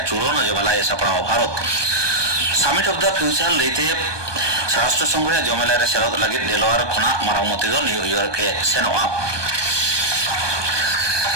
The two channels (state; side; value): late; left; 1.2 ms